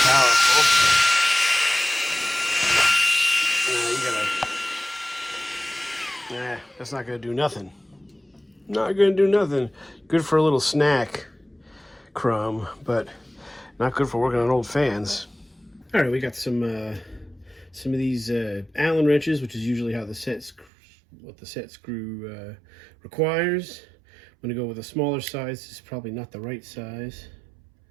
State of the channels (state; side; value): drops out; left; at 20.7 s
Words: powerful. That's not going to do nothing. Not going to do nothing. Good for a little snack crumb, but not good for working on old fans. All right, we got some of these Allen wrenches, which is usually how the set screw requires. I'm going to go with a smaller size. This is probably not the right size.